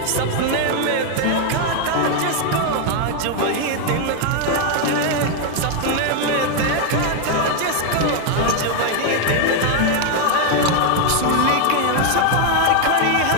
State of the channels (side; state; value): both; different; correlation 0.01